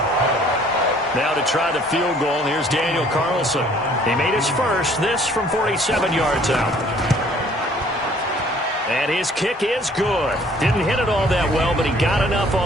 Now to try the field goal, here's Daniel Carlson. He made his first, this from 47 yards out. And his kick is good. Didn't hit it all that well, but he got enough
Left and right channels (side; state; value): both; normal; correlation 0.57